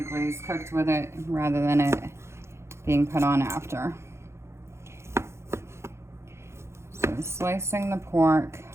glaze cooked with it rather than it being put on after. So slicing the pork.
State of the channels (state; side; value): late; left; 0.13 ms